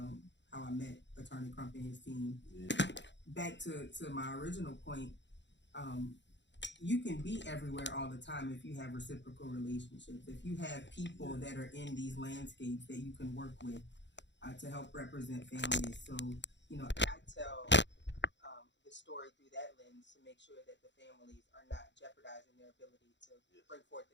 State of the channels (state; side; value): late; right; 0.52 ms